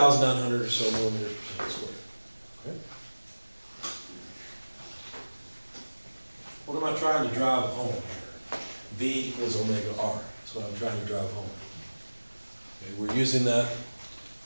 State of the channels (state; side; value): inverted; both; correlation -1.00